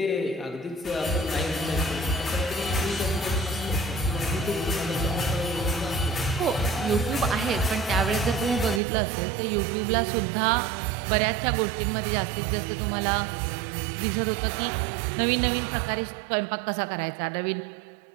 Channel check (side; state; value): left; drops out; at 8.8 s